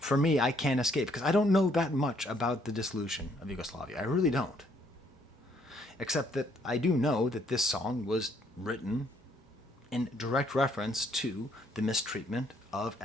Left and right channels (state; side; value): normal; both; correlation 0.67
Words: me, I can't escape, because I don't know that much about the dissolution of Yugoslavia. I really don't. Except that I do know that this song was written in direct reference to the mistreatment of